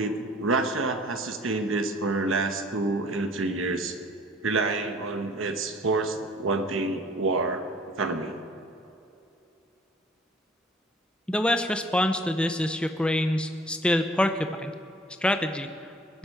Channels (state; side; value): normal; both; correlation 0.52